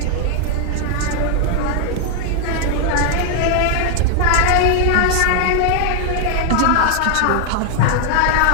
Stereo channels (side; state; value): both; different; correlation 0.00